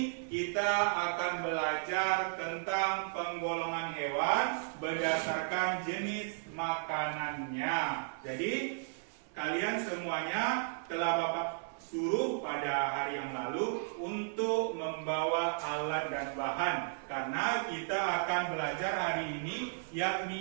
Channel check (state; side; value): silent; left; 55 dB below the other